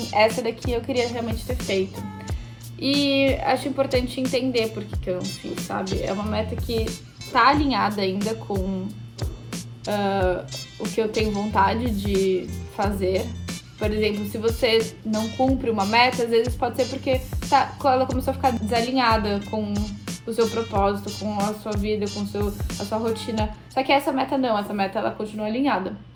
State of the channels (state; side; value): identical; both; correlation 1.00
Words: essa daqui eu queria realmente ter feito. E acho importante entender por que eu não fiz, sabe? É uma meta que tá alinhada ainda com o que eu tenho vontade de fazer. Por exemplo, se você não cumpre uma meta, às vezes pode ser porque ela começou a ficar desalinhada com o seu propósito, com a sua vida, com a sua rotina. Só que essa meta não, essa meta ela continua alinhada.